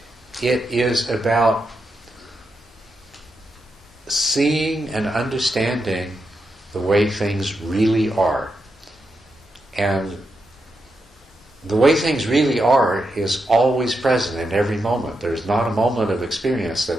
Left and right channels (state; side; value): normal; both; correlation 0.85